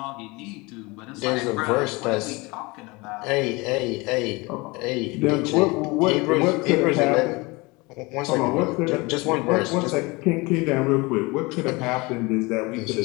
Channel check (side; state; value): right; quieter; 24.8 dB